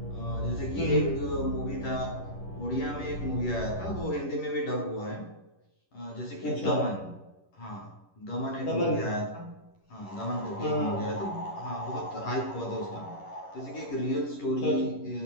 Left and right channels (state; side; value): late; right; 11 ms